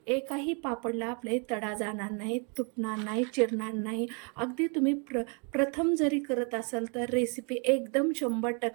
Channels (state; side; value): quieter; left; 36.8 dB